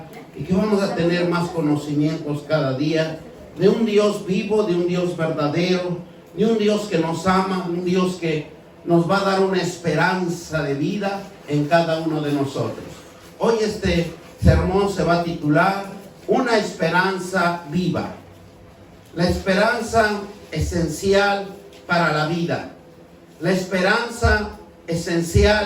y que vamos a tener más conocimientos cada día de un Dios vivo, de un Dios verdadero, de un Dios que nos ama, un Dios que nos va a dar una esperanza de vida en cada uno de nosotros. Hoy este sermón se va a titular Una esperanza viva. La esperanza esencial para la vida. La esperanza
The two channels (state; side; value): identical; both; correlation 1.00